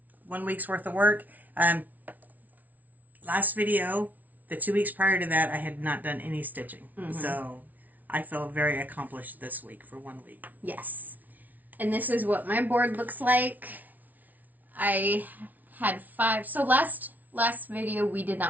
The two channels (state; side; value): late; left; 0.077 ms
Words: 1 week's worth of work. Last video, the 2 weeks prior to that, I had not done any stitching. Mm-hmm. So I feel very accomplished this week for 1 week. Yes. And this is what my board looks like. I had 5. So last video we did